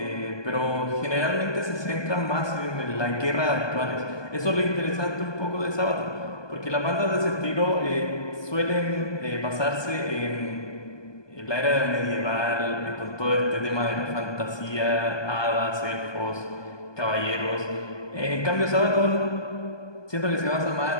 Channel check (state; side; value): late; right; 1.2 ms